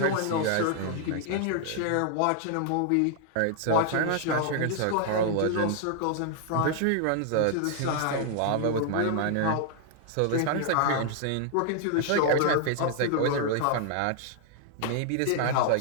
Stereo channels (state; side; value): different; both; correlation 0.00